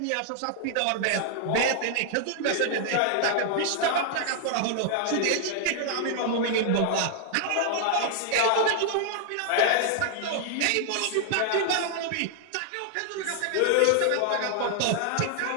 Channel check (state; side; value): different; both; correlation -0.01